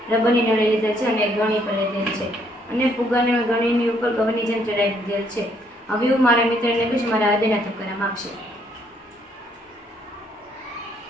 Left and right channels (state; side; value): normal; both; correlation 0.68